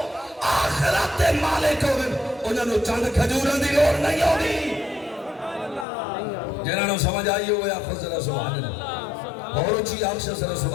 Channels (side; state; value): right; drops out; at 5.9 s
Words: آخرت دے مالک ہوئے انہوں نے چاند کھجورہ دی لوڑ نہیں ہوگی. جنہوں نے سمجھ آئی ہوئے آپ کو سبحان اللہ. اور اچھی آنکھ سے